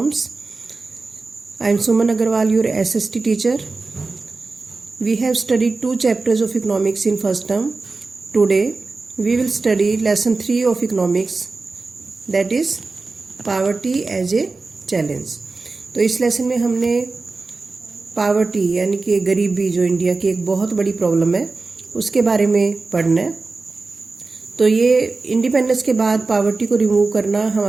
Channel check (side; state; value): left; quieter; 3.8 dB